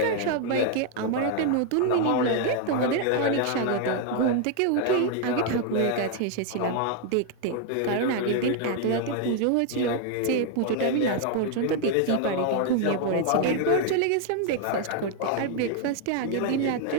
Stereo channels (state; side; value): different; both; correlation 0.00